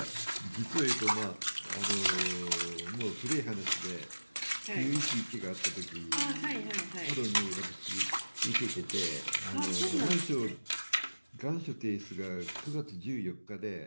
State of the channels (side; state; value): both; inverted; correlation -1.00